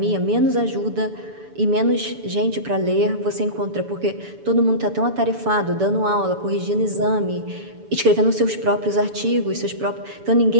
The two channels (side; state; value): left; late; 7.0 ms